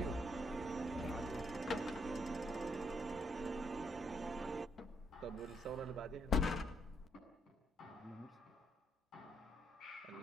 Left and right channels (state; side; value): normal; both; correlation 0.75